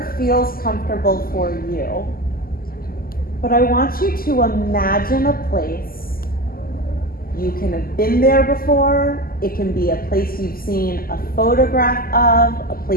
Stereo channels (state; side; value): late; right; 0.42 ms